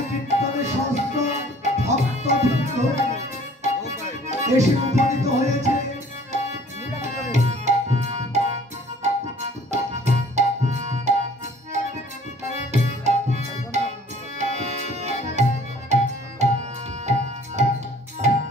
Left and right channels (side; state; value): both; normal; correlation 0.52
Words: কীর্তনে শাস্ত্র ভক্তবৃন্দ এসে উপনীত হয়েছে